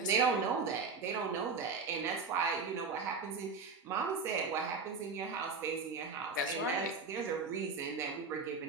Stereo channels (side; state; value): left; quieter; 4.7 dB